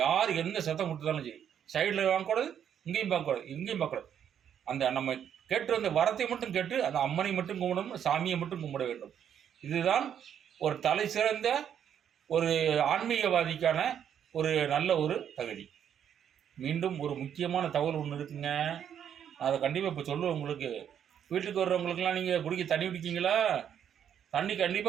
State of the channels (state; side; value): quieter; left; 9.0 dB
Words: யார் எந்த சத்தம் கொடுத்தாலும் சரி, சைடில் வாங்கக்கூடாது, இங்கேயும் பார்க்கக்கூடாது, இங்கேயும் பார்க்கக்கூடாது. அந்த நம்ம கேட்டு வந்த வரத்தை மட்டும் கேட்டு அந்த அம்மனை மட்டும் கும்பிடணும், சாமியை மட்டும் கும்பிட வேண்டும். இதுதான் ஒரு தலை சிறந்த ஒரு ஆன்மீகவாதிக்கான ஒரு நல்ல ஒரு தகுதி. மீண்டும் ஒரு முக்கியமான தகவல் ஒன்று இருக்குங்க, அதை கண்டிப்பாக இப்போ சொல்லுவேன் உங்களுக்கு. வீட்டுக்கு வர்றவங்களுக்கெல்லாம் நீங்கள் குடிக்க தண்ணி குடிக்கிங்களா? தண்ணி